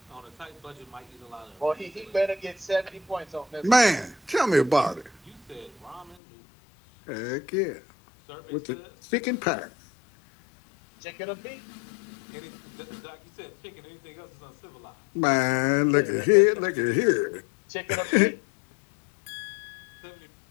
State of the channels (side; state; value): right; drops out; at 6.2 s